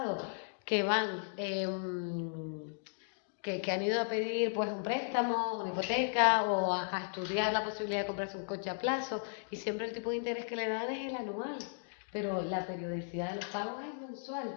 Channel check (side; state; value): right; silent; digital silence